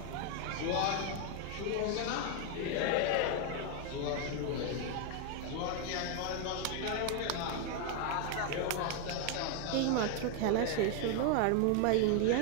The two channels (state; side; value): different; both; correlation 0.00